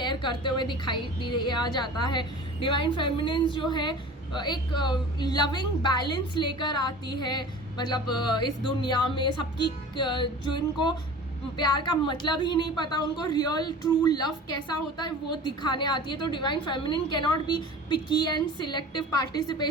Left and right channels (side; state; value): both; normal; correlation 0.39